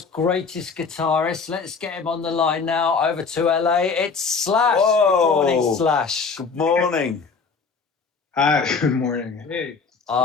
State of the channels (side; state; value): right; quieter; 5.1 dB